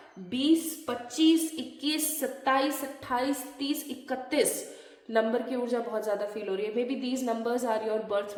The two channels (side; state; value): both; identical; correlation 1.00